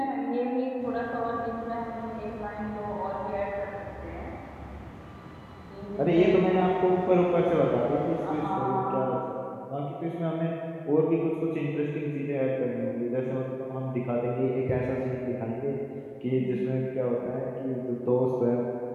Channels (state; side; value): identical; both; correlation 1.00